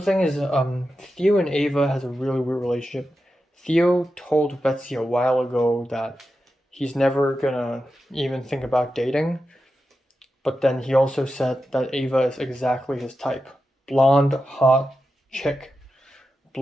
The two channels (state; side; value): normal; both; correlation 0.90